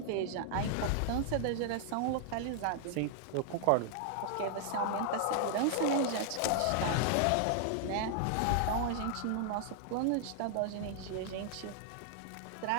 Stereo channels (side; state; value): both; different; correlation 0.00